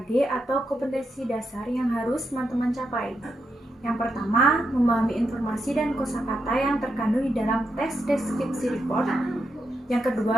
atau kompetensi dasar yang harus teman-teman capai. Yang pertama, memahami informasi dan kosakata yang terkandung di dalam teks deskripsi report. Yang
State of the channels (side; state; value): both; normal; correlation 0.83